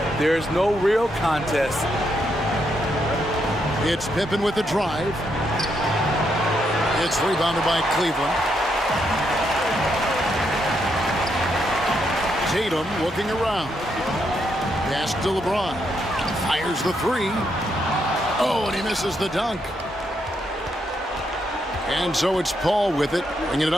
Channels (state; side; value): normal; both; correlation 0.78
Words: there's no real contest. It's Pippen with the drive. It's rebounded by Cleveland. Tatum looking around. Pass to LeBron. Fires the 3. Oh, and he misses the dunk. And so it's Paul with it, bringing it